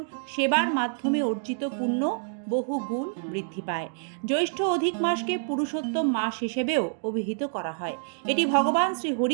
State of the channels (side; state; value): left; silent; digital silence